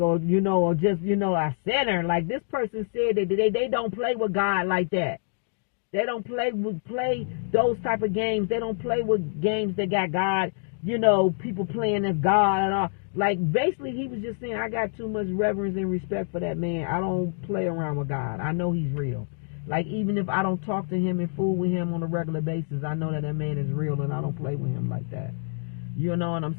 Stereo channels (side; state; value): right; silent; digital silence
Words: or, or just, a sinner. Like this person said that they don't play with God like that. They don't play those type of games. They don't play with games that got God, people playing as God and all. Like, basically, he was just saying, I got too much reverence and respect for that man. I don't play around with God. I know he's real. Like, even if I don't talk to him and fool with him on a regular basis, I know that man is real and I don't play with him like that. You know what I'm